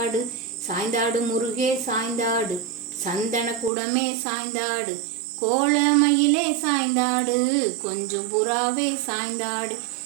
சாய்ந்தாடு முருகே சாய்ந்தாடு, சந்தன குடமே சாய்ந்தாடு, கோலமயிலே சாய்ந்தாடு, கொஞ்சம் புறாவே சாய்ந்தாடு,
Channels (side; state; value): left; drops out; at 3.7 s